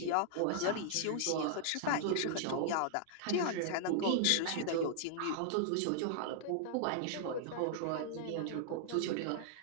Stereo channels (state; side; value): different; both; correlation -0.01